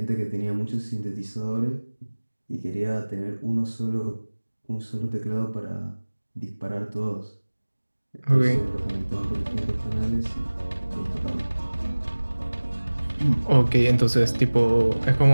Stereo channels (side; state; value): both; inverted; correlation -1.00